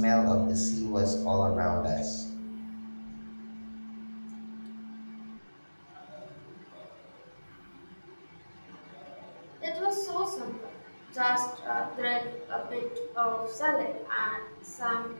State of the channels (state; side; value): inverted; both; correlation -1.00